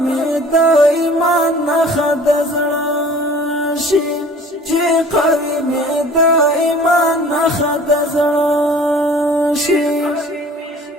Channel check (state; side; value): normal; both; correlation 0.48